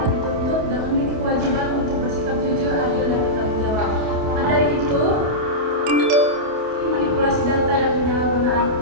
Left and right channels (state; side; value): late; left; 28 ms